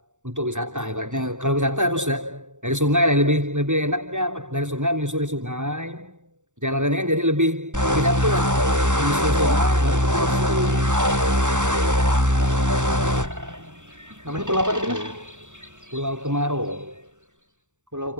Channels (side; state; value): left; late; 0.85 ms